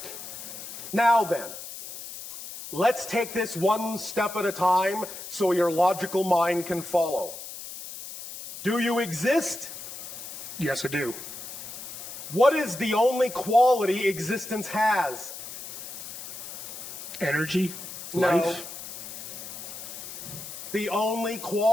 Now then, let's take this one step at a time so your logical mind can follow. Do you exist? Yes, I do. What is the only quality existence has? Energy, No. life. The only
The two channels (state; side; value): noise; left; hiss, 10 dB below the sound